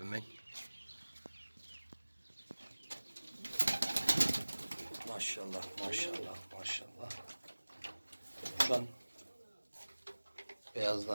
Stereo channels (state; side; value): inverted; both; correlation -1.00